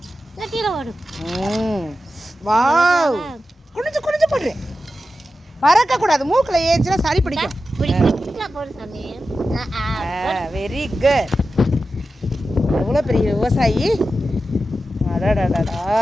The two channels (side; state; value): both; normal; correlation 0.92